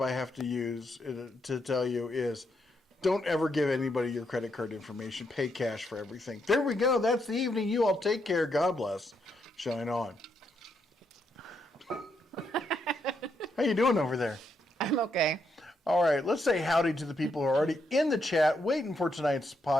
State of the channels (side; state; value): both; normal; correlation 0.78